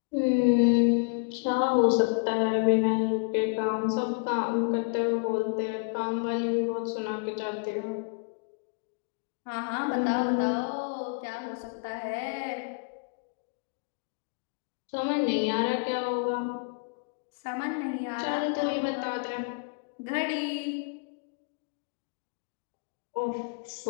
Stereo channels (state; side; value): quieter; right; 38.8 dB